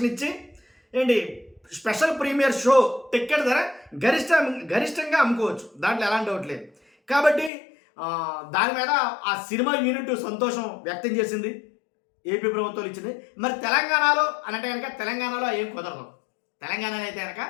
ఇచ్చి స్పెషల్ ప్రీమియర్ షో టికెట్ ధర గరిష్టంగా అమ్ముకోవచ్చు. దాంట్లో ఎలాంటి డౌట్ లేదు. కాబట్టి దాని మీద ఆ సినిమా యూనిట్ సంతోషం వ్యక్తం చేసింది. ఏపీ ప్రభుత్వం ఇచ్చింది. మరి తెలంగాణలో అంటే కనుక తెలంగాణలో ఏం కుదరదు. తెలంగాణలో అయితే కనుక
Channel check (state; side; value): drops out; right; at 7.5 s